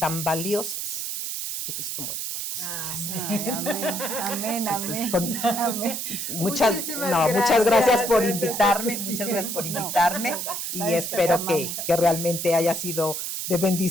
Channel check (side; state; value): right; noise; hiss, 4 dB below the sound